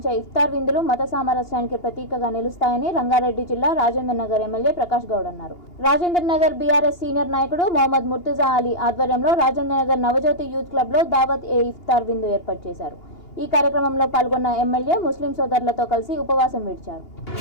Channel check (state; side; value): late; right; 2.8 ms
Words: ఇఫ్తార్ విందులు మత సామరస్యానికి ప్రతీకగా నిలుస్తాయని రంగారెడ్డి జిల్లా రాజేంద్ర నగర్ ఎమ్మెల్యే ప్రకాష్ గౌడ్ అన్నారు. రాజేంద్ర నగర్ బీఆర్ఎస్ సీనియర్ నాయకుడు మొహమ్మద్ ముర్తుజా అలీ ఆధ్వర్యంలో రాజేంద్ర నగర్ నవజ్యోతి యూత్ క్లబ్ లో దావత్ ఏ ఇఫ్తార్ విందు ఏర్పాటు చేశారు. ఈ కార్యక్రమంలో పాల్గొన్న ఎమ్మెల్యే ముస్లిం సోదరులతో కలిసి ఉపవాసం విడిచారు.